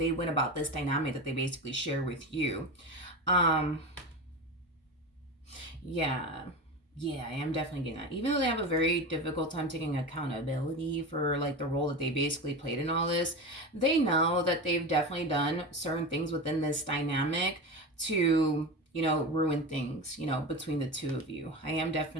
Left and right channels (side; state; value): both; normal; correlation 0.25